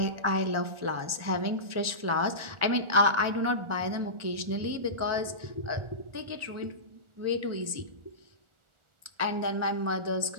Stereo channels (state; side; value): late; left; 1.4 ms